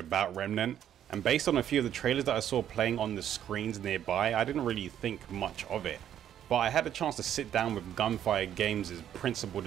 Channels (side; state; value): left; quieter; 10.4 dB